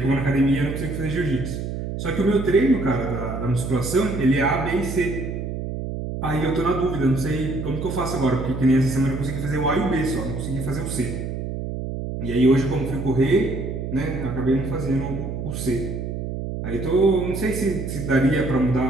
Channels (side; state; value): right; noise; hum, 5 dB below the sound